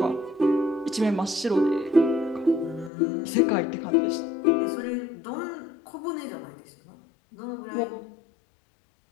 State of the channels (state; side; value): drops out; right; at 2.9 s